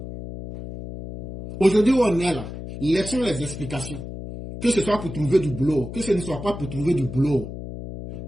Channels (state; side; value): noise; left; hum, 10 dB below the sound